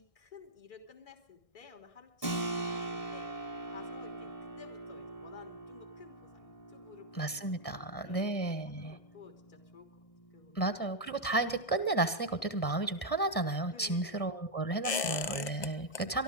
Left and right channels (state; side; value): late; right; 1.6 ms